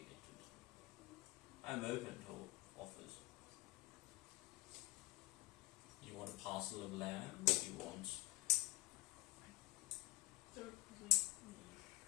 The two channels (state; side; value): quieter; right; 20.6 dB